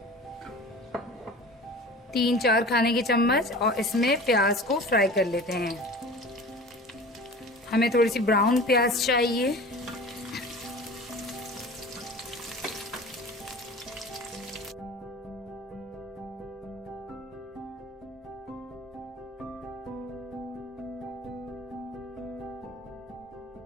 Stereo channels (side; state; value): both; normal; correlation 0.39